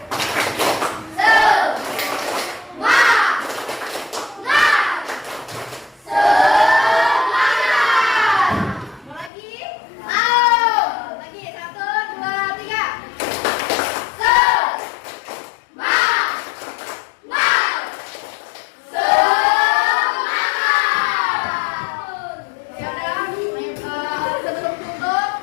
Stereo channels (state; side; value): drops out; right; at 9.3 s